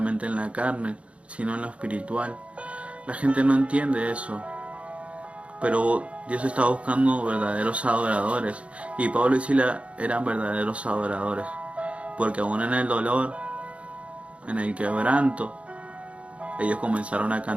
en la carne, sino en lo espiritual. La gente no entiende eso, pero Dios está buscando verdaderos adoradores, y Pablo y Silas eran verdaderos adoradores, porque aún en el dolor, en el quebranto, ellos comenzaron a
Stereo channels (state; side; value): late; left; 0.062 ms